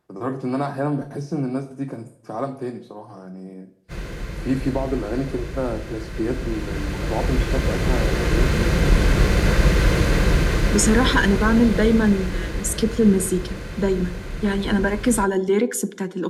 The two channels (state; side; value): identical; both; correlation 1.00